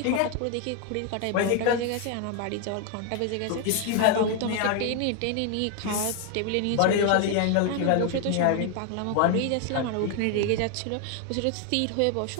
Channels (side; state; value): both; different; correlation 0.01